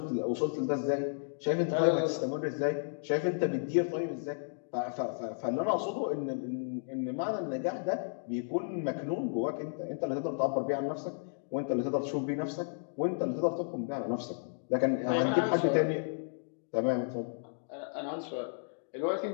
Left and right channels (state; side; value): silent; right; digital silence